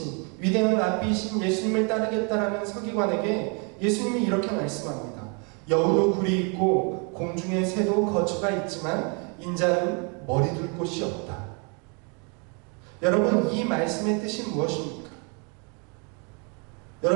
위대한 랍비이신 예수님을 따르겠다라는 서기관에게 예수님이 이렇게 말씀합니다. 여우도 굴이 있고 공중의 새도 거처가 있지만 인자는 머리 둘 곳이 없다. 여러분, 이 말씀의 뜻이 무엇입니까?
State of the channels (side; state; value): left; quieter; 35.0 dB